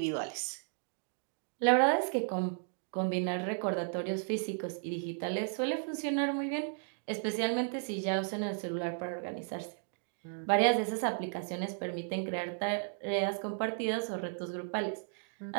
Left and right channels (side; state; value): left; silent; digital silence